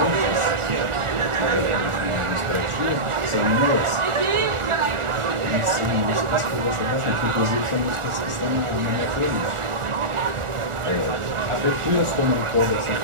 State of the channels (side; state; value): left; late; 1.4 ms